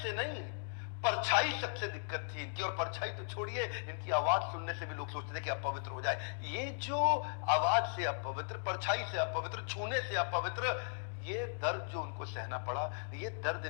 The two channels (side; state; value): right; silent; digital silence